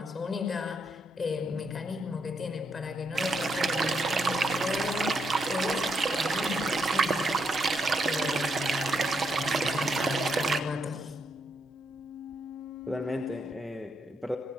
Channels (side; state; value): both; normal; correlation 0.78